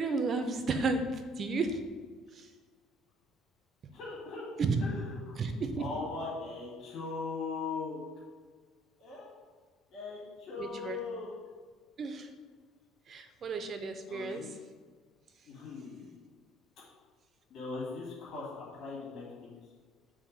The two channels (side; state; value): both; normal; correlation 0.62